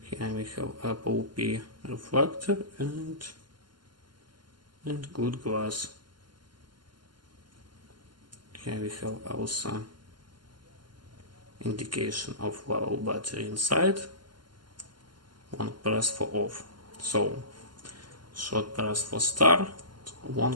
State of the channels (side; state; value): left; late; 0.71 ms